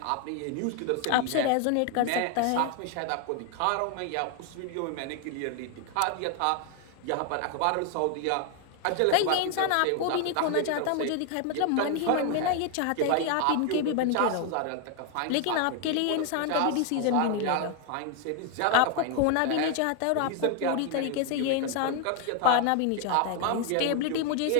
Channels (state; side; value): different; both; correlation 0.00